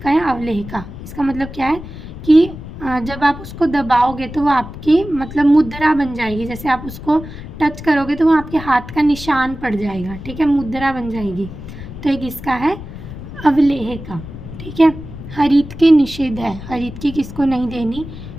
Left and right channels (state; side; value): noise; left; rumble, 12 dB below the sound